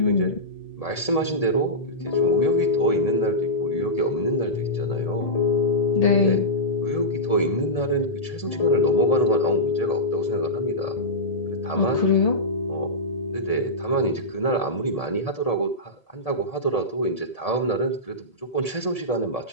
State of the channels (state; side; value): late; right; 1.7 ms